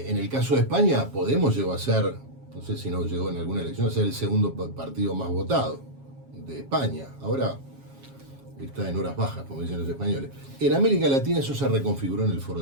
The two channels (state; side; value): late; left; 7.3 ms